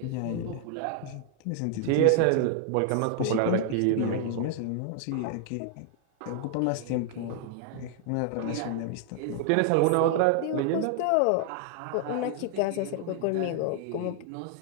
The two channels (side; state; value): both; different; correlation 0.00